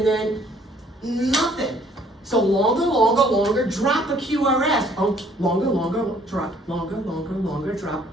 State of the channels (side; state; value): both; normal; correlation 0.61